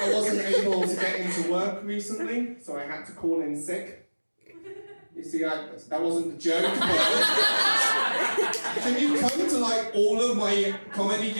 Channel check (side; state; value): both; inverted; correlation -1.00